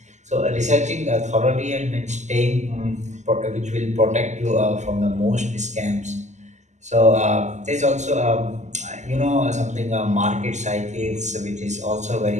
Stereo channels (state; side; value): late; left; 0.34 ms